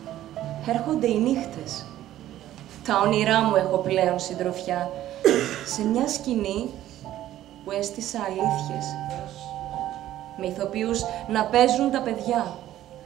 έρχονται οι νύχτες. Τα όνειρά μου έχω πλέον συντροφιά σε μια σκηνή που έστησα αλήθειες. Με ηθοποιούς να παίζουν τα παιδιά.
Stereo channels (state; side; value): quieter; left; 13.2 dB